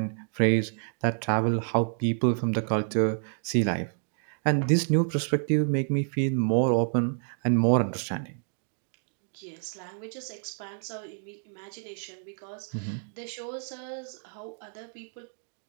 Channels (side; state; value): left; silent; digital silence